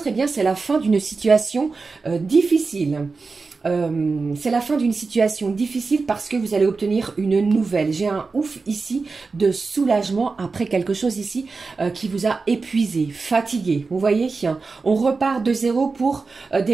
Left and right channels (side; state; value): left; quieter; 4.3 dB